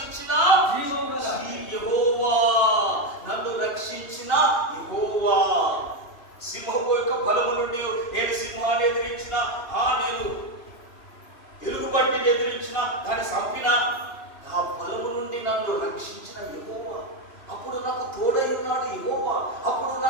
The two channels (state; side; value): late; right; 2.8 ms